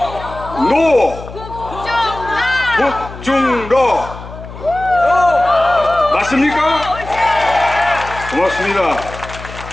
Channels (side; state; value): left; noise; hum, 13 dB below the sound